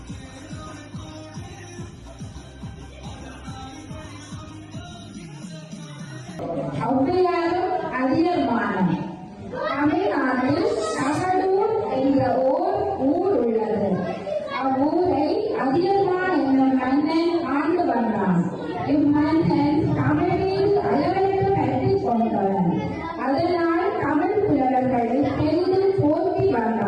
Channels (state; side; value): identical; both; correlation 1.00